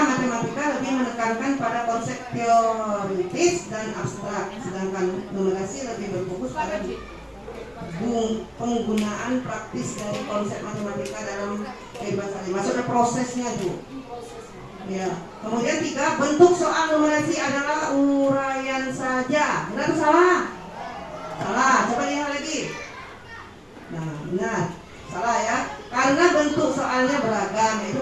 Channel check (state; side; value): identical; both; correlation 1.00